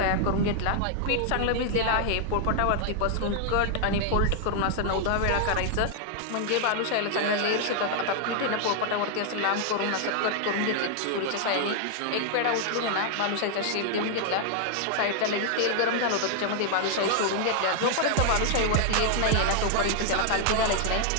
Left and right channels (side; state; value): both; different; correlation 0.00